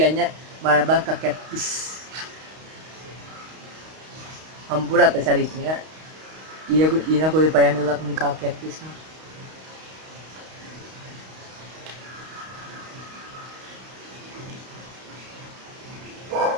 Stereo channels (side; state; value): left; late; 32 ms